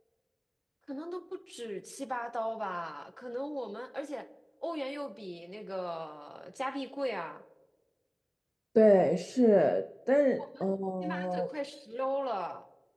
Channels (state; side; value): identical; both; correlation 1.00